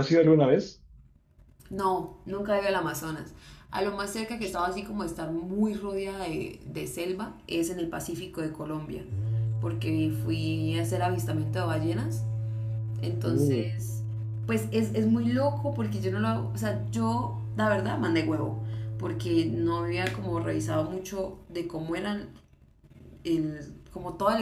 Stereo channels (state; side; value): identical; both; correlation 1.00